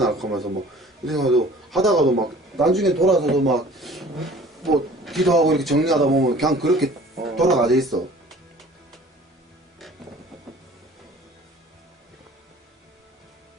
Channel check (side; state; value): both; normal; correlation 0.49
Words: 하면서 뭐 이래가지고 하다가도 막 나중에 돌아서도 막 뭐 기도하고 이렇게 정리하다 보면 그냥 그렇게 돌아가져 있어.